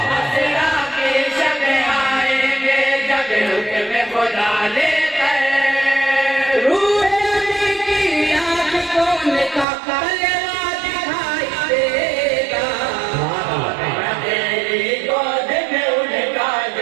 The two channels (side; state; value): left; drops out; at 9.7 s